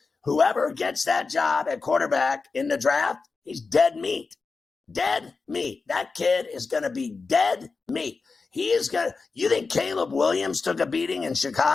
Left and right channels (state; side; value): quieter; right; 4.4 dB